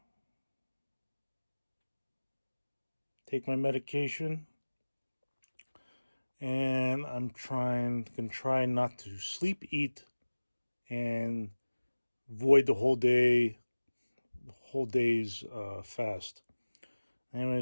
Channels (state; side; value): inverted; both; correlation -1.00